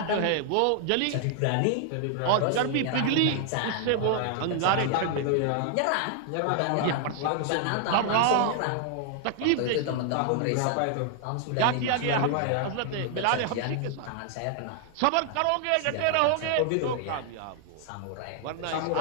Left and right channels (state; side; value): different; both; correlation 0.00